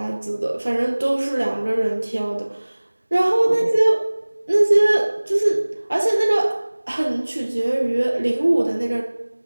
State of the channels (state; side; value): inverted; both; correlation -1.00